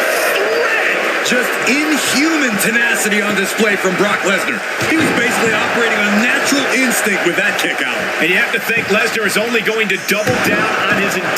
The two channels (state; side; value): identical; both; correlation 1.00